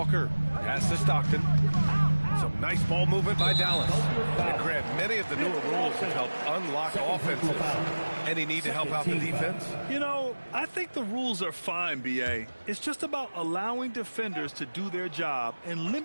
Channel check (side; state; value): both; inverted; correlation -1.00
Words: Pass to Stockton. Some nice ball movement by Dallas. And Grant, many of the newer rules have helped unlock offenses. Any need to help out the defense? You know, I think the rules are fine, B.A. It's just about allowing defenders to do their job and